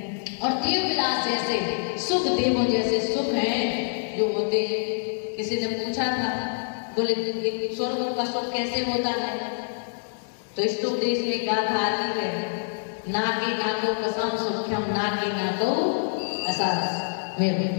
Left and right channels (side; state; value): right; silent; 61 dB below the other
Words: और देव विलास जैसे सुख, देवों जैसे सुख हैं जो होते हैं। किसी ने पूछा था, बोले स्वर्ग का सुख कैसे होता है? तो इस उपदेश में गाथा आती है, नाके नाको कसम सुख्यम नाके नाको असास।